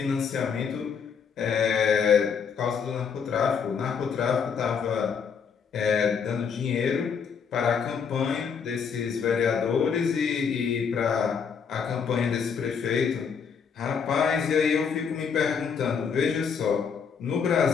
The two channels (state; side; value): quieter; right; 6.5 dB